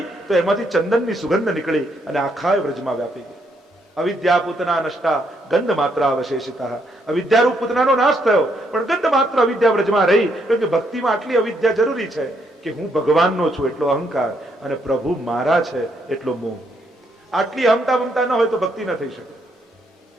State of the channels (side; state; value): both; normal; correlation 0.74